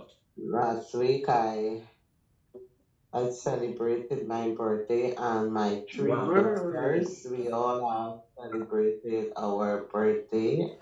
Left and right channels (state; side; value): identical; both; correlation 1.00